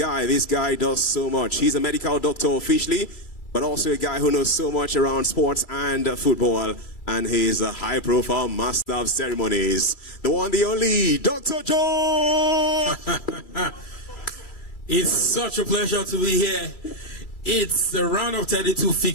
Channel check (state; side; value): late; right; 2.3 ms